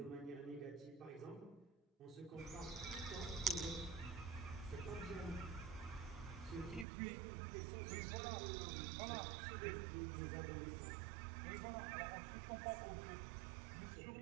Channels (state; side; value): drops out; left; at 6.9 s